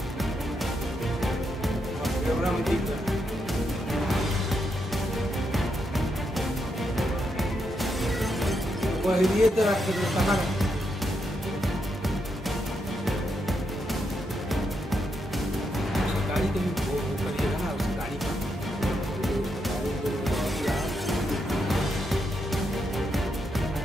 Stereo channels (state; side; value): normal; both; correlation 0.81